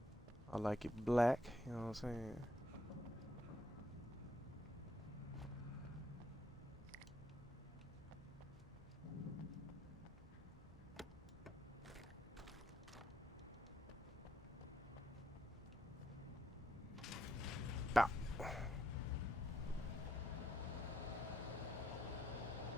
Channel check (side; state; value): both; normal; correlation 0.75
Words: I like it black, you know what I'm saying? Bow.